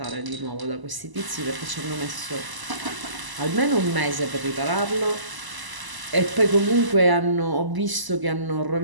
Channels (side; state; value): left; late; 1.0 ms